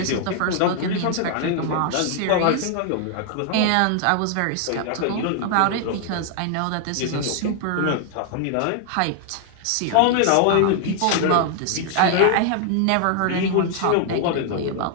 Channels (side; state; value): both; different; correlation 0.00